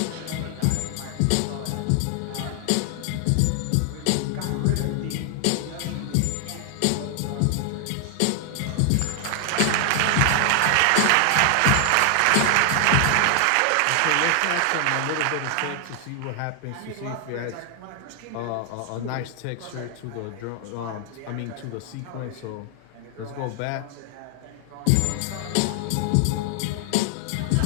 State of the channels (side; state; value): both; different; correlation 0.00